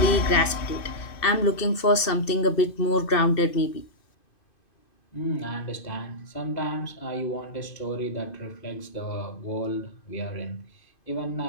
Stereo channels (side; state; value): right; late; 2.7 ms